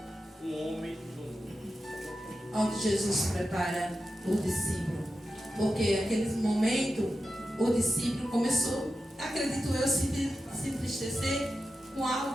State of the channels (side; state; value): both; normal; correlation 0.91